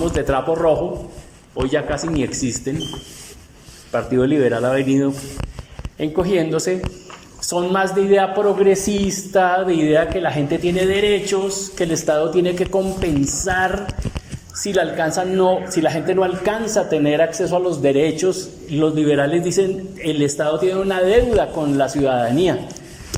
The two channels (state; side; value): identical; both; correlation 1.00